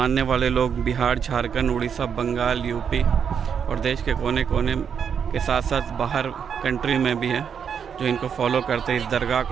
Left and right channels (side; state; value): left; quieter; 7.3 dB